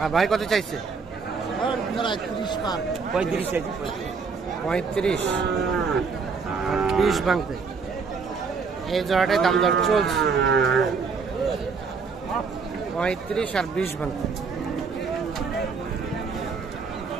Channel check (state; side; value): quieter; left; 5.1 dB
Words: আর ভাই কত চাইছে? 35 আর 20 ভাঙতে। এই জোড়াটাই দাম দর চলছে, 35 আর 20 ভাঙতে।